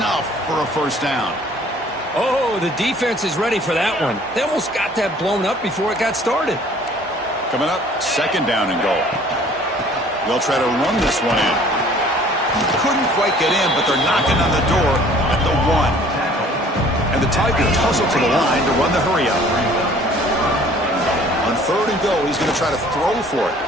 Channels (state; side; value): normal; both; correlation 0.54